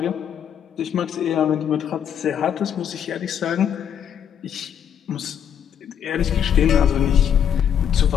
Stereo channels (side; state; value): right; quieter; 8.7 dB